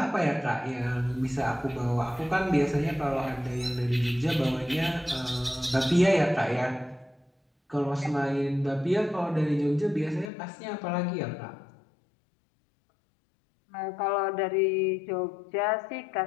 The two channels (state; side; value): drops out; right; at 10.3 s